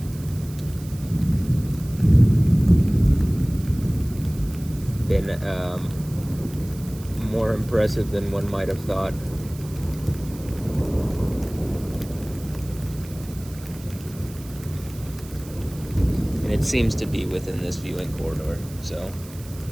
been more impressive than one might have thought. And it seems to be within this viewing corridor, so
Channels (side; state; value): right; noise; hiss, 19 dB below the sound